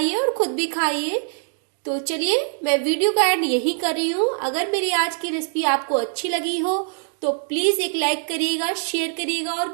और खुद भी खाइए। तो चलिए मैं वीडियो का एंड यही कर रही हूँ। अगर मेरी आज की रेसिपी आपको अच्छी लगी हो तो प्लीज एक लाइक करिएगा, शेयर करिएगा और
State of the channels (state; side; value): silent; left; digital silence